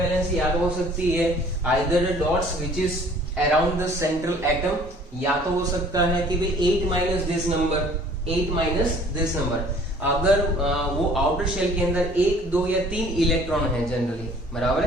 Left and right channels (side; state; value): both; normal; correlation 0.53